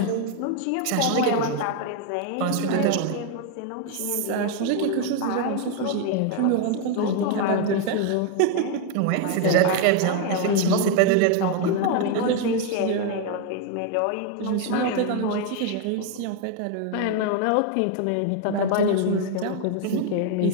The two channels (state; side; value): different; both; correlation 0.01